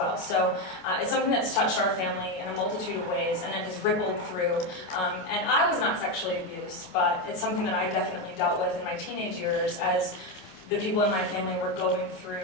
So it's something that's touched our family in a multitude of ways, and it has rippled through. And I was not sexually abused, but it's something that I definitely dealt with in my teenage years as the people in my family were going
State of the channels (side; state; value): right; late; 27 ms